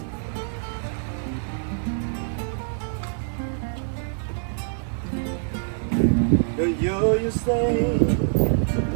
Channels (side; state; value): left; silent; 62 dB below the other